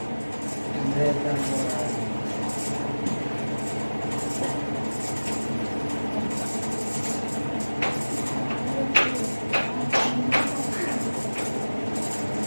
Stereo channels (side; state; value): both; inverted; correlation -1.00